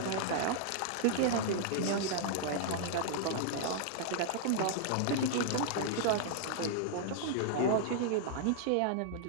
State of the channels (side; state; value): both; different; correlation -0.01